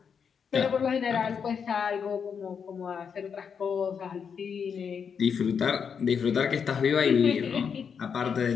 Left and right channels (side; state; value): right; quieter; 6.7 dB